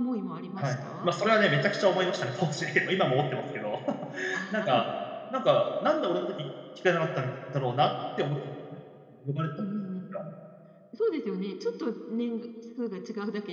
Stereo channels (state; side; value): identical; both; correlation 1.00